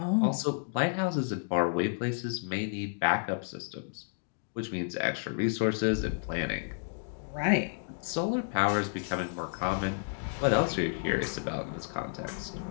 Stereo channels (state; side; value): silent; right; digital silence